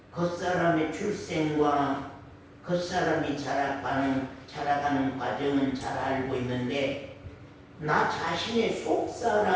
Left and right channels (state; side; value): identical; both; correlation 1.00